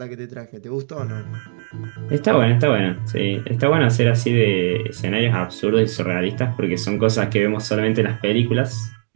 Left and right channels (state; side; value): silent; left; digital silence